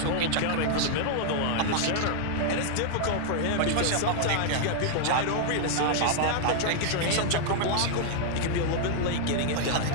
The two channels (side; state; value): both; different; correlation -0.01